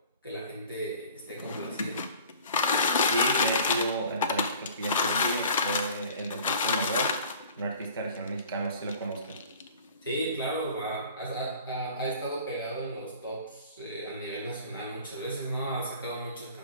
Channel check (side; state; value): both; inverted; correlation -0.46